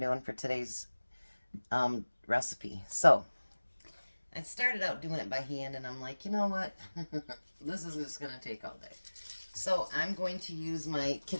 for today's recipe. So, I started out doing it by hand and I'm like, you know what? This is just going to take all day. So, I'm going to use my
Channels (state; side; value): inverted; both; correlation -1.00